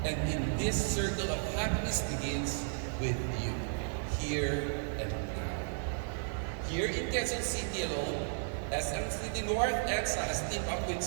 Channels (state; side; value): silent; left; 55 dB below the other